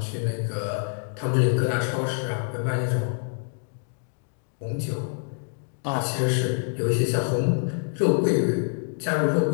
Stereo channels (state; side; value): silent; right; 61 dB below the other